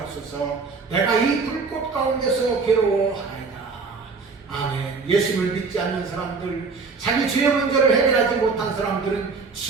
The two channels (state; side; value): quieter; left; 4.5 dB